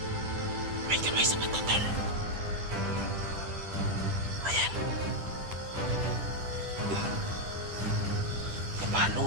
May kamay sa mata, tol. Ayan.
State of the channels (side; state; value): left; late; 10 ms